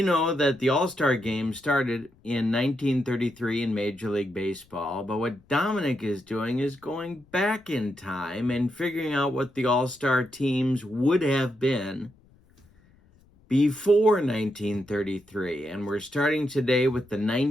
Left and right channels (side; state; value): left; noise; rumble, 30 dB below the sound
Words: know that the All-Star Game started in 1933 in Major League Baseball, but what Dominic is doing is going back in time and figuring out what the All-Star teams would have been before 1933. And we're starting today with the